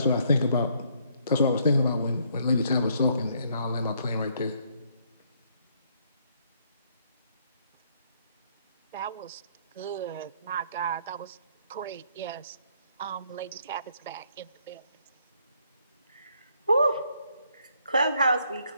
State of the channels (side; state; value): both; inverted; correlation -0.69